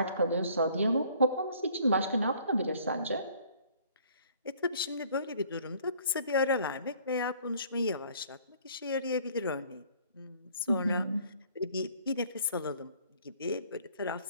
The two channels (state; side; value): inverted; both; correlation -0.57